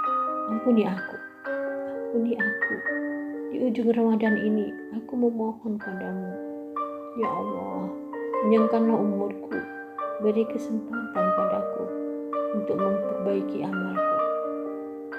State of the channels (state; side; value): identical; both; correlation 1.00